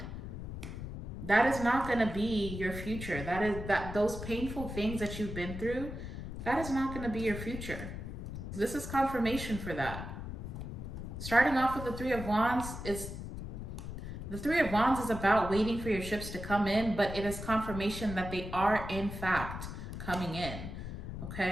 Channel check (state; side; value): noise; left; rumble, 7 dB below the sound